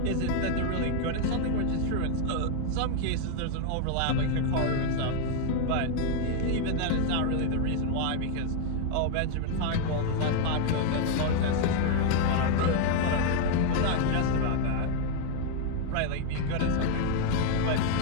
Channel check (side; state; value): both; different; correlation 0.01